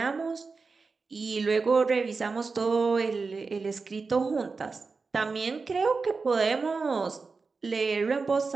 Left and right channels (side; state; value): left; quieter; 4.4 dB